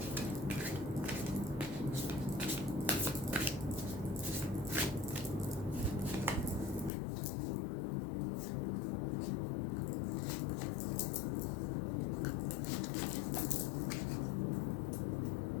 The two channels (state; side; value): drops out; right; at 6.9 s